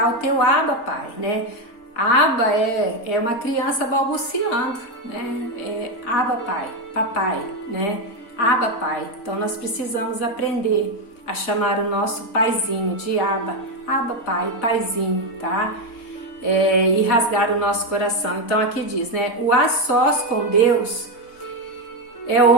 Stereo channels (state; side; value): late; right; 4.4 ms